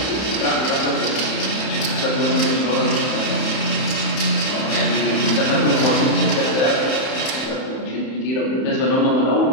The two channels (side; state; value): right; late; 31 ms